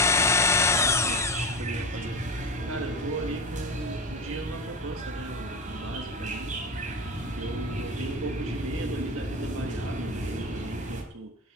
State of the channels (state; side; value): normal; both; correlation 0.23